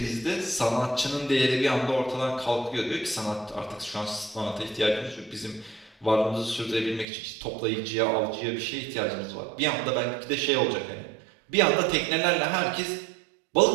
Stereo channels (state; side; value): drops out; left; at 7.1 s